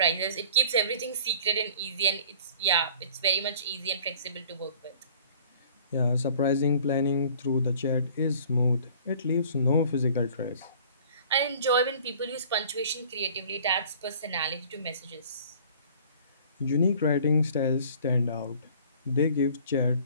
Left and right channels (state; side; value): inverted; both; correlation -0.50